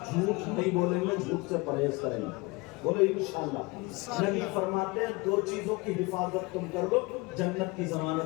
جھوٹ نہیں بولیں گے، جھوٹ سے پرہیز کریں گے۔ بولے انشاءاللہ۔ نبی فرماتے ہیں 2 چیزوں کی حفاظت تم کر لو، جنت کی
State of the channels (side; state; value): right; quieter; 24.9 dB